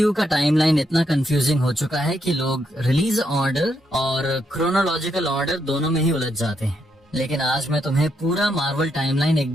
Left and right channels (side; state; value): both; normal; correlation 0.79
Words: का टाइमलाइन इतना कंफ्यूजिंग हो चुका है कि लोग रिलीज ऑर्डर और क्रोनोलॉजिकल ऑर्डर दोनों में ही उलझ जाते हैं। लेकिन आज मैं तुम्हें पूरा मार्वल टाइमलाइन